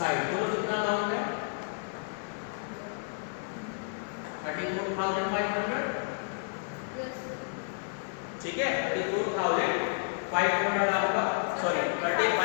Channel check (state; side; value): silent; right; 55 dB below the other